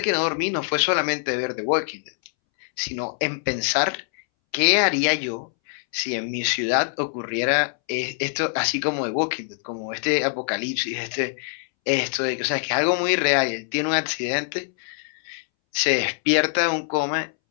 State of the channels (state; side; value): silent; right; 63 dB below the other